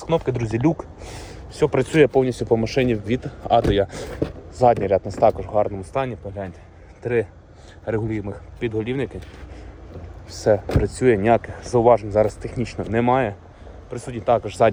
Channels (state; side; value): identical; both; correlation 1.00